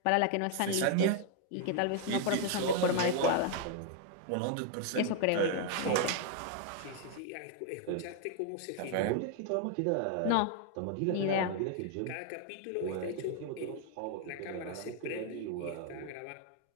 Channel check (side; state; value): both; different; correlation 0.00